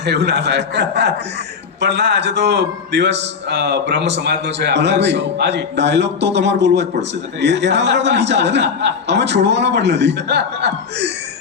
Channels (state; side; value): quieter; right; 5.9 dB